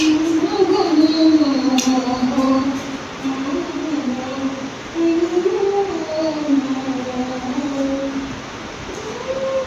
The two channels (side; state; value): both; identical; correlation 1.00